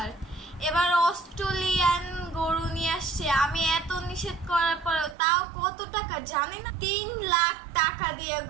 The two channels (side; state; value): left; drops out; at 5.2 s